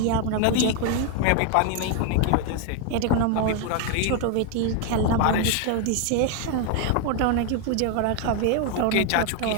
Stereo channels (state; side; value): different; both; correlation 0.01